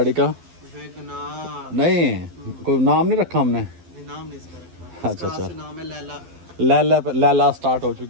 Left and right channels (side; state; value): left; late; 12 ms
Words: का? वैगनार। नहीं, कोई नाम नहीं रखा हमने। नाम नहीं इसका रखा। अच्छा अच्छा, इसका नाम है लैला। लैला स्टार्ट हो